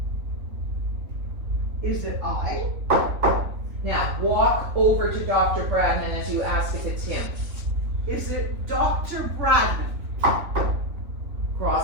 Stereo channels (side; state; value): left; late; 3.4 ms